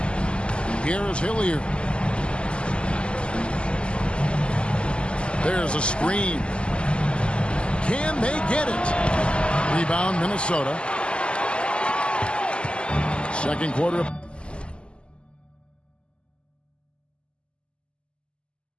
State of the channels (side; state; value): right; late; 0.052 ms